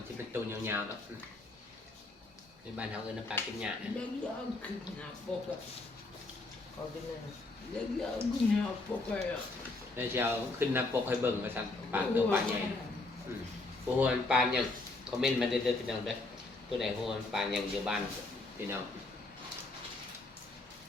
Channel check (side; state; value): right; quieter; 3.2 dB